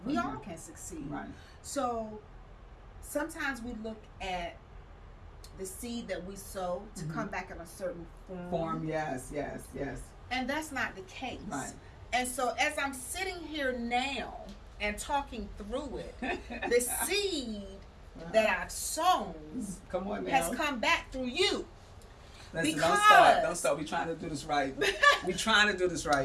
We all can succeed. Right. So sometimes we look at the seed that we sow to come back in a certain form. Yes. And that's not the case. Right. And so as I'm sitting here now and talking through it, the seed that I've sown has come back through you. Listen, don't start. We're trying to do this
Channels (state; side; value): identical; both; correlation 1.00